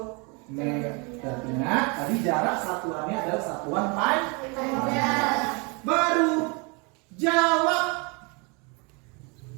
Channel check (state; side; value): quieter; left; 31.0 dB